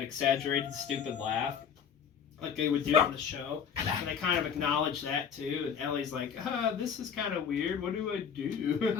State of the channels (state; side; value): quieter; right; 7.4 dB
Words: exaggerated, stupid laugh, like they would do on the show. And they kind of acknowledge that too. And Ellie's like, "This is kind of weird. What do I